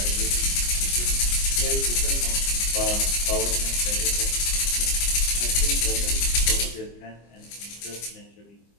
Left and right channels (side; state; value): right; late; 25 ms